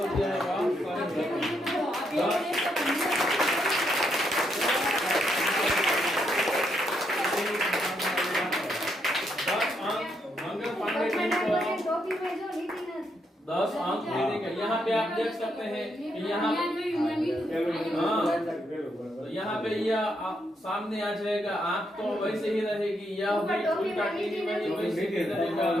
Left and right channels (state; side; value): normal; both; correlation 0.77